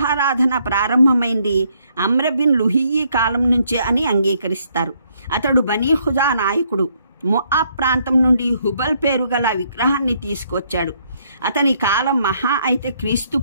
ప్రారంభమైంది అమ్ర్ బిన్ లుహియ్యి కాలం నుంచే అని అంగీకరిస్తారు. అతడు బనీ ఖుజా నాయకుడు. మొఆబ్ ప్రాంతం నుండి హుబల్ పేరు గల విగ్రహాన్ని తీసుకొచ్చాడు. అతని కాలం మహా అయితే క్రీస్తు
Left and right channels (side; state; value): both; inverted; correlation -0.71